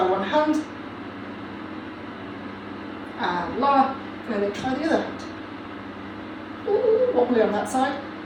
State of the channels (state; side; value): identical; both; correlation 1.00